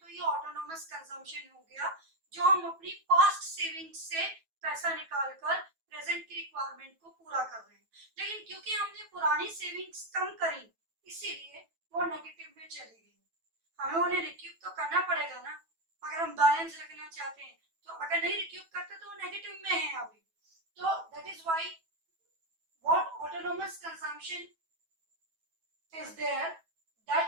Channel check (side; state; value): left; late; 9.1 ms